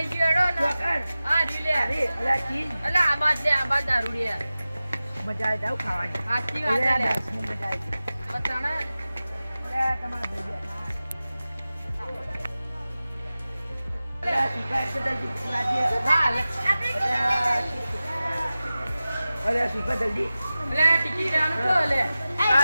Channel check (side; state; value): both; inverted; correlation -0.95